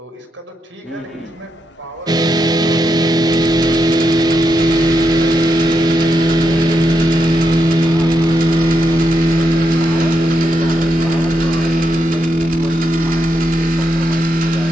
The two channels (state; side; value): normal; both; correlation 0.82